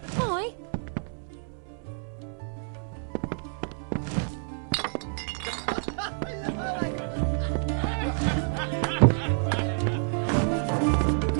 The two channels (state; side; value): silent; left; 59 dB below the other